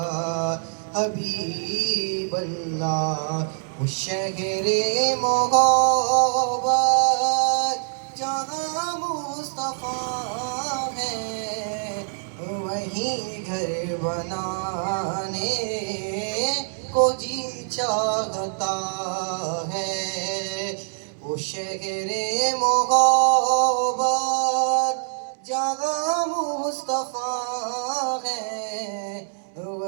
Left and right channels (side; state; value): left; silent; 62 dB below the other